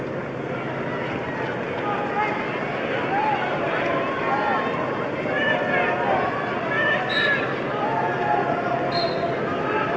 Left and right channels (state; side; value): identical; both; correlation 1.00